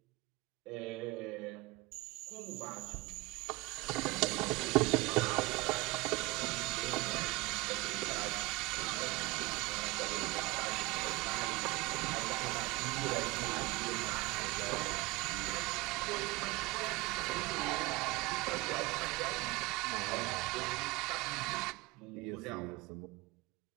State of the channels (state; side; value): quieter; left; 22.0 dB